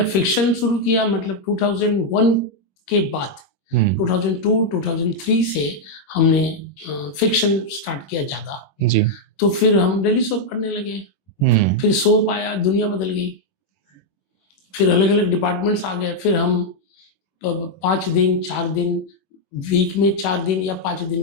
फिक्शन शुरू किया, मतलब 2001 के बाद 2002 2003 से हमने फिक्शन स्टार्ट किया ज्यादा। जी। तो फिर हम डेली सोप करने लगे। फिर सोप आया, दुनिया बदल गई। फिर अलग अलग डिपार्टमेंट्स आ गए। फिर हम 5 दिन 4 दिन, वीक में 4 दिन या 5 दिन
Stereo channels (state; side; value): late; right; 21 ms